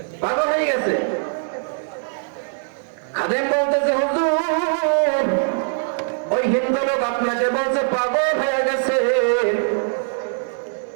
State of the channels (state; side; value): silent; left; digital silence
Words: পাগল হয়ে গেছে। খাদেম বলতেছে হুজুর ওই হিন্দু লোক আপনাকে বলছে পাগল হয়ে গেছে।